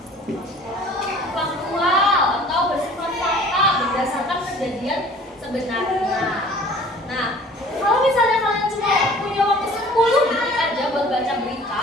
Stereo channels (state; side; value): normal; both; correlation 0.48